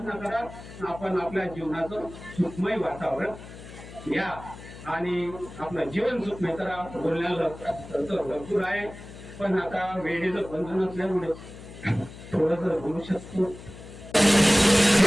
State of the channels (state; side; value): noise; left; hum, 15 dB below the sound